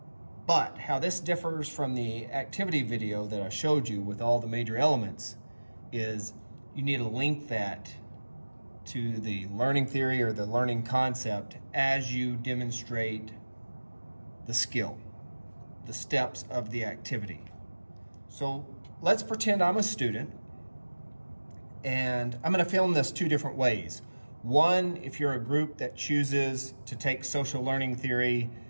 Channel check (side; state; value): both; inverted; correlation -1.00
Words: But how this differs from the activity video that I showed you with all the major elements is you need to link that to the learning theory or the learning concept as you demonstrate the skill, the steps of the activity. So let's pretend I'm a student and I'm going to film this two different ways. One, if you're a group that chooses to take social learning theory